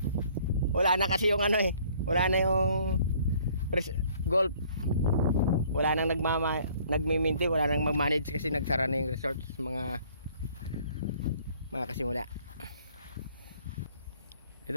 Wala na kasi yung ano eh. Wala na yung golf. Wala nang nagmiminti, wala nang mag-manage kasi nagsara na yung resorts, mga kasimula. Ito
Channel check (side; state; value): both; inverted; correlation -0.58